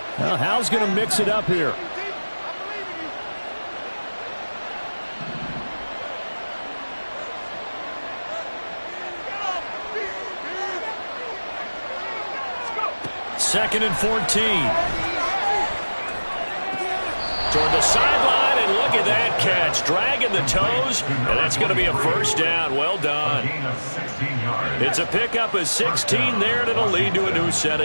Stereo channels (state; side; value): inverted; both; correlation -1.00